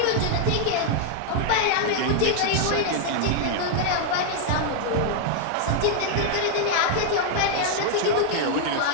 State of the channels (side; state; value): both; different; correlation 0.00